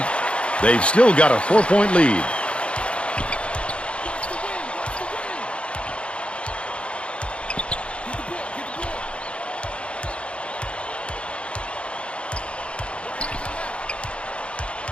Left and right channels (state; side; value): late; right; 0.059 ms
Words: They've still got a 4-point lead.